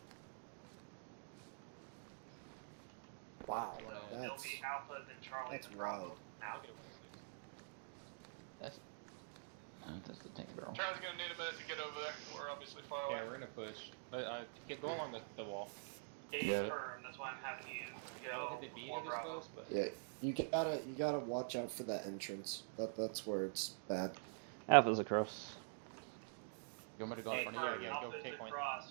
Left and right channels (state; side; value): silent; left; digital silence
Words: Wow, So it'll be Alpha, then Charlie, that's then Bravo. wild. Now. That's the tank barrel. Charlie's gonna need a minute to get over there. We're obviously far away. Yeah, we're gonna push. Go along the wall. Yeah. Firm, that's why I'm having you go Hit the B before this Bravo. close, but Yeah, you gotta watch out for that entrance. That's where it's bad. Alpha's across. You want me to go in front of you? Yeah, Alpha go is take point.